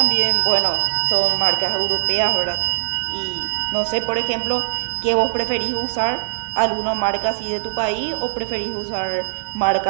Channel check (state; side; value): silent; left; digital silence